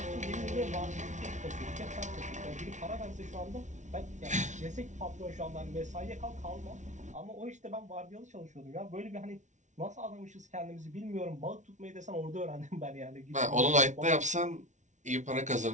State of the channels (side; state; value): left; late; 0.35 ms